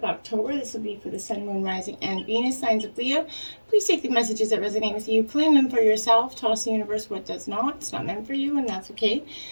October. This will be for the Sun, Moon, Rising, and Venus signs of Leo. Please take the messages that resonate with you, claim them for yourself, toss the universe what does not. It's not meant for you, and that's okay.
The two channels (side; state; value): both; inverted; correlation -1.00